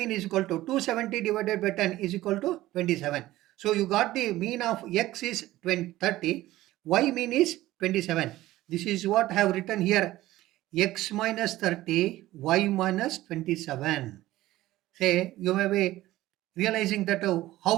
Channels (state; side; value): quieter; left; 16.2 dB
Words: is equal to 270 divided by 10 is equal to 27. So you got the mean of x is 30. Y mean is 27. This is what I have written here. X minus 30, y minus 27. Say, you may be realizing that